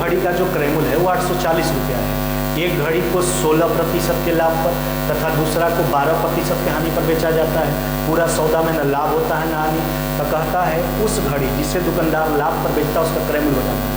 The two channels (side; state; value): both; identical; correlation 1.00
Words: का जो क्रयमूल्य है वो 840 रुपया है। एक घड़ी को 16% के लाभ पर तथा दूसरा को 12% के हानि पर बेचा जाता है। पूरा सौदा में न लाभ होता है न हानि। तो कहता है उस घड़ी जिसे दुकानदार लाभ पर बेचता है उसका क्रयमूल्य